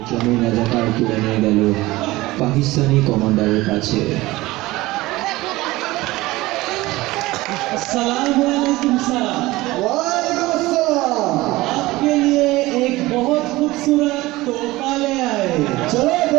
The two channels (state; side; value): quieter; left; 19.2 dB